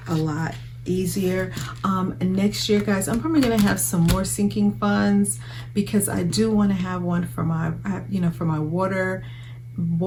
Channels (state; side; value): identical; both; correlation 1.00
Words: a lot easier. Next year, guys, I'm probably gonna have some more sinking funds because I do want to have one for my, for my water